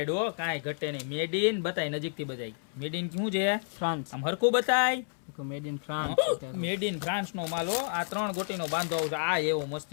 હો, કાંઈ ઘટે નહીં. મેડ ઇન બતાય, નજીકથી બતાય. મેડ ઇન શું છે? ફ્રાન્સ. આમ હરખું બતાય. Made in France. Made in France નો માલ હો. આ 3 ગોટીનો બાંધો આવશે. આ એવો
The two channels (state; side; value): silent; right; 58 dB below the other